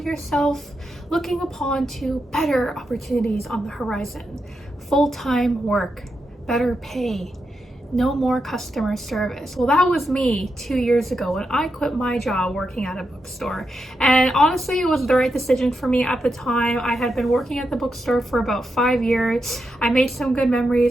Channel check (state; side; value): normal; both; correlation 0.85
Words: yourself looking upon to better opportunities on the horizon. Full-time work, better pay, no more customer service. Well, that was me 2 years ago when I quit my job working at a bookstore. And honestly, it was the right decision for me at the time. I had been working at the bookstore for about 5 years. I made some good